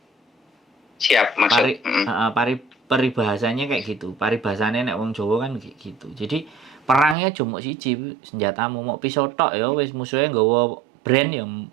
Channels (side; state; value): left; drops out; at 7.2 s